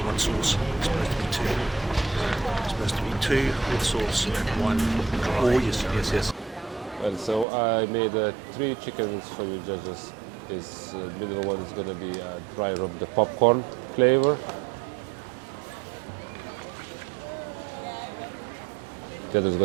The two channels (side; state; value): left; drops out; at 7.5 s